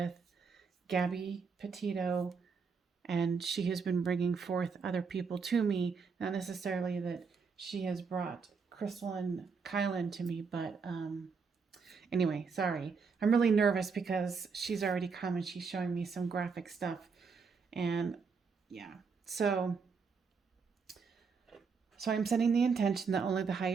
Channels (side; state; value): left; quieter; 5.3 dB